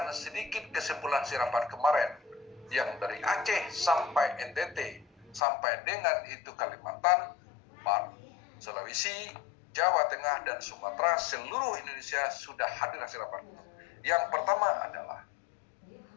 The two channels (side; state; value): right; drops out; at 5.4 s